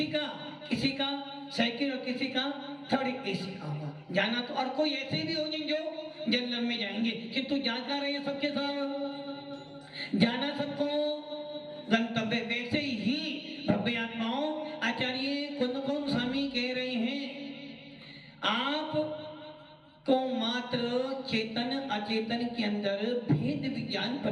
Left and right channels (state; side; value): identical; both; correlation 1.00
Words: का, किसी का सेकंड और किसी का थर्ड एसी का होगा। जाना तो और कोई ऐसे भी होंगे जो जनरल में जाएंगे, किंतु जाकर रहे सबके साथ जाना सबको गंतव्य। वैसे ही भव्य आत्माओं आचार्य कुंदकुंद स्वामी कह रहे हैं आप को मात्र चेतन अचेतन के अंदर भेद विज्ञान